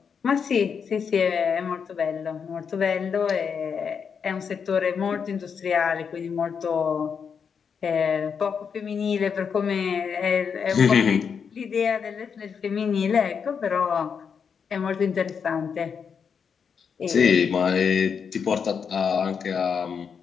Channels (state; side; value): quieter; right; 6.5 dB